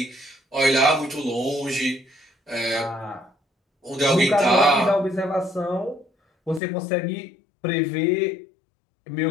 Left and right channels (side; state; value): right; drops out; at 6.6 s